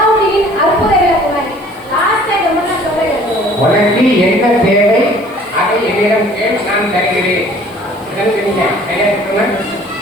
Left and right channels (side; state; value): right; noise; hiss, 28 dB below the sound